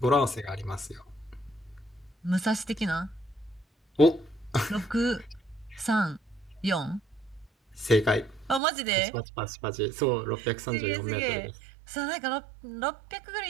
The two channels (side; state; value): left; drops out; at 8.6 s